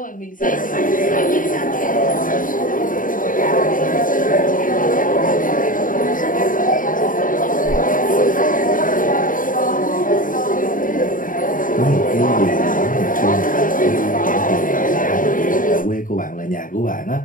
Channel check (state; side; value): late; right; 0.39 ms